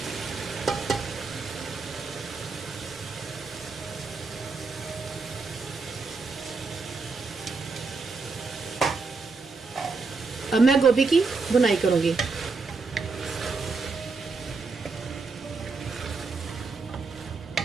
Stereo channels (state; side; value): quieter; left; 4.3 dB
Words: अब मैं गोभी की बुनाई करूंगी।